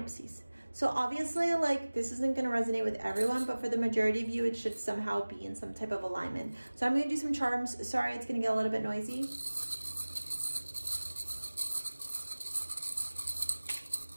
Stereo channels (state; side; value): inverted; both; correlation -1.00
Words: So obviously, like, this isn't going to resonate with everyone, but for the majority of you, it should somehow be in some type of alignment. So I'm going to do some charms. Sorry, it's going to get a little bit noisy.